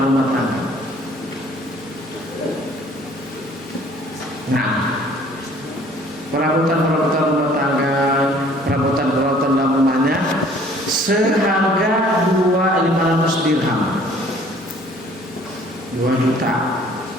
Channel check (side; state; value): both; normal; correlation 0.55